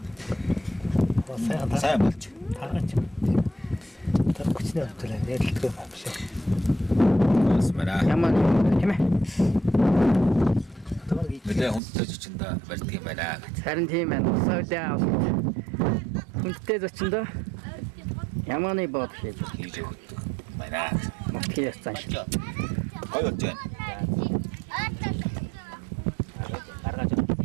сайн болж. Смара. Ямар тийм ээ. Нэлээ хүнтэй зочиндоо барьдаг юм байна. Харин тийм байна. Саудаа хүнтэй зочиндоо ямааны бод хийж Байна. мөтгий яцсан шиг. Гой болж байна.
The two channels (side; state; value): left; drops out; at 11.8 s